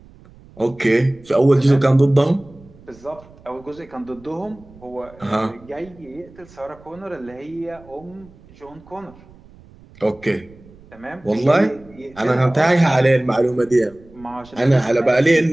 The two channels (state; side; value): noise; right; rumble, 24 dB below the sound